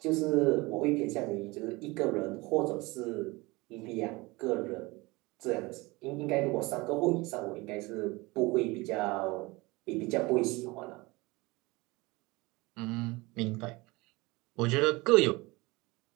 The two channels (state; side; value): quieter; left; 23.2 dB